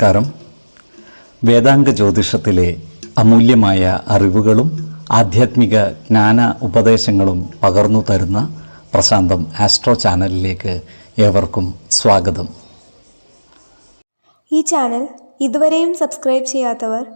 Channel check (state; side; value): inverted; both; correlation -1.00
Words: വേദാംഗ ജ്യോതിഷത്തിലെ അമൂല്യമായ അറിവുകളും ആധ്യാത്മിക ജ്ഞാന ഉപദേശങ്ങളും പകർന്നു തരുന്ന പ്രശാന്തം ആസ്ട്രോ ചാനലിലേക്ക് ഏവർക്കും സ്വാഗതം. ഈ ചാനൽ ഇതുവരെയും സബ്സ്ക്രൈബ് ചെയ്യാത്തവർ